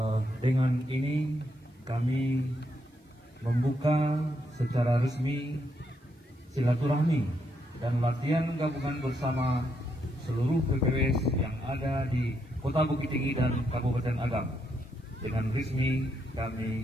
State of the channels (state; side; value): normal; both; correlation 0.78